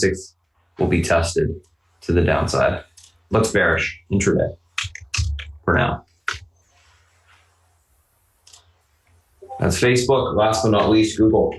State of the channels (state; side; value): identical; both; correlation 1.00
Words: will be tested to the downside. Looks bearish intraday for now. That's Facebook. Last but not least, Google.